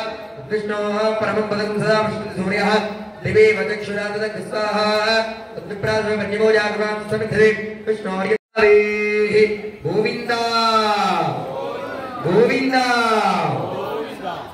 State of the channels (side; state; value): both; identical; correlation 1.00